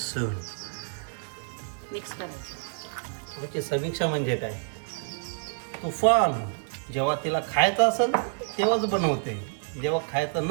मिक्स करायचं. आमची समीक्षा म्हणजे काय तुफान. जेव्हा तिला खायचं असेल तेव्हाच बनवते, जेव्हा खायचं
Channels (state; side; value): silent; left; digital silence